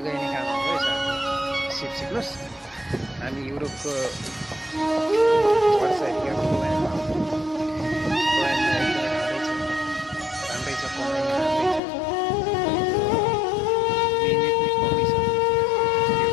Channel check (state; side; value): drops out; right; at 11.8 s